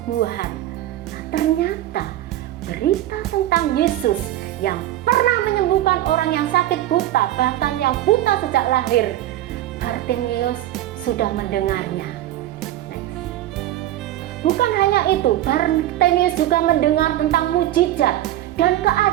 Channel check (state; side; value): quieter; left; 13.7 dB